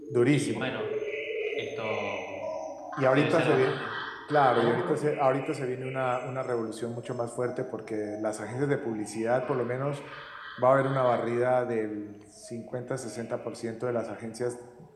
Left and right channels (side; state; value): both; identical; correlation 1.00